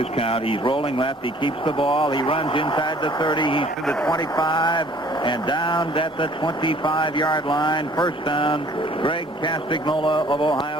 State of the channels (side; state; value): both; normal; correlation 0.55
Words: count. He's rolling left. He keeps the ball. He runs inside the 30. He's to the 25 and down at the 25-yard line. 1st down. Greg Castagnola of